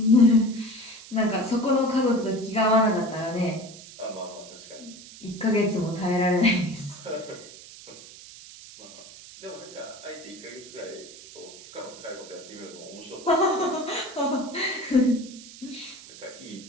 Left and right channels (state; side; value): noise; right; hiss, 17 dB below the sound